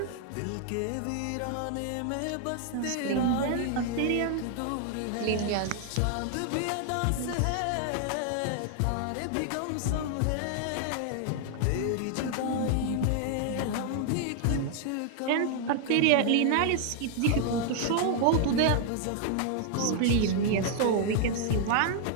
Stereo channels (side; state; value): both; different; correlation 0.00